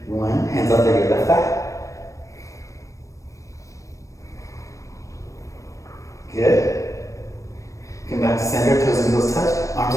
1. Hands outside your left thigh. Good. Come back to center, toes and heels touch, arms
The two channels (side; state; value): right; late; 0.16 ms